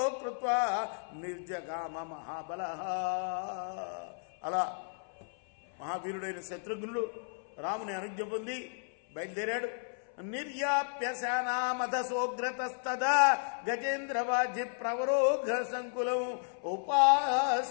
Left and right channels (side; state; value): right; silent; 55 dB below the other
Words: కృత్వా నిర్జగామ మహాబల. అలా మహావీరుడైన శత్రుఘ్నుడు రాముని అనుజ్ఞ పొంది బయలుదేరాడు. నిర్యాప్య సేనామధసోగ్రతస్తదా గజేంద్రవాజి ప్రవరోఘ సంకులం